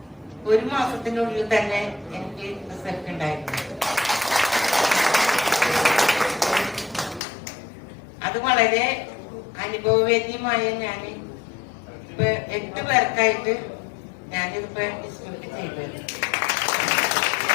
1 മാസത്തിനുള്ളിൽ തന്നെ എനിക്ക് റിസൾട്ട് ഉണ്ടായിരുന്നു. അത് വളരെ അനുഭവവേദ്യമായ ഞാൻ ഇപ്പൊ 8 പേർക്കായിട്ട് ഞാനിതിപ്പോ ഡിസ്ട്രിബ്യൂട്ട് ചെയ്തു.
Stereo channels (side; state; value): right; drops out; at 7.2 s